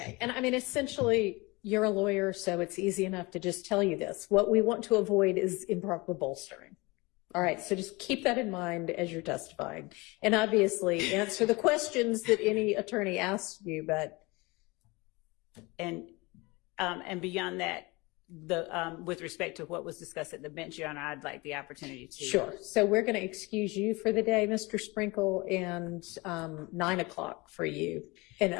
And I mean, essentially, you're a lawyer, so it's easy enough to just tell you this. What we want to avoid is improper bolstering. All right. So just keep that in mind as you're testifying. And obviously answer the questions that any attorney asks you, but. And beyond that, with respect to what was discussed at the bench, Your Honor, I'd like the opportunity to. Sure. So we're going to excuse you for the day, Mr. Sprinkel, and 9 o'clock for you. And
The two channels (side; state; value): right; quieter; 24.5 dB